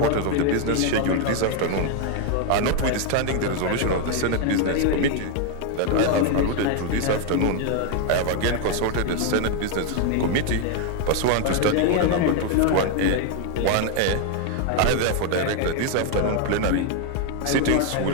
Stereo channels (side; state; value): both; different; correlation 0.01